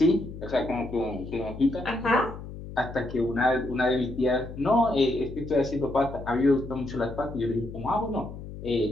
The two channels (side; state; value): left; noise; hum, 11 dB below the sound